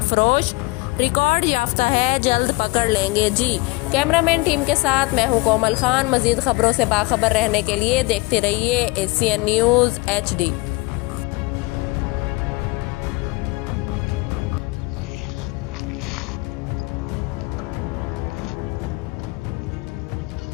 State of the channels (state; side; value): quieter; right; 24.2 dB